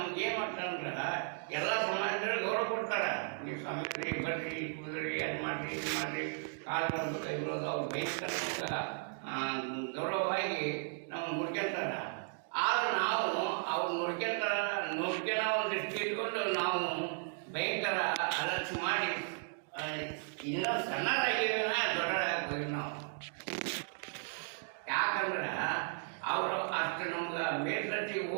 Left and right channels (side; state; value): left; silent; 54 dB below the other